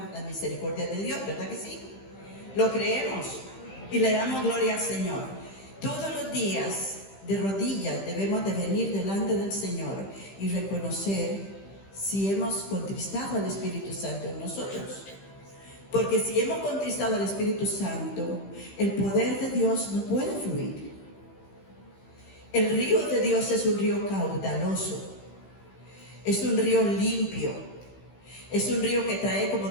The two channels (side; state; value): right; late; 15 ms